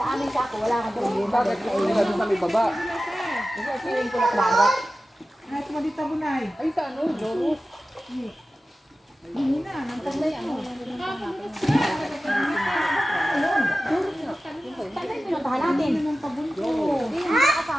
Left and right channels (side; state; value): both; normal; correlation 0.94